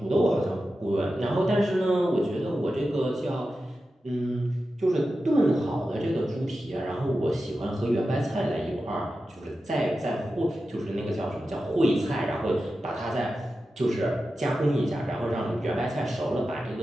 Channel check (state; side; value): normal; both; correlation 0.92